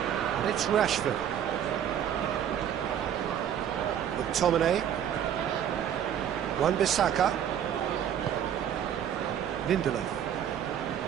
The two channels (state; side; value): quieter; left; 9.5 dB